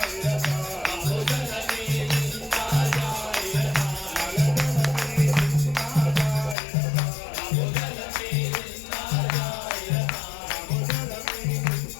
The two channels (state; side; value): drops out; right; at 6.6 s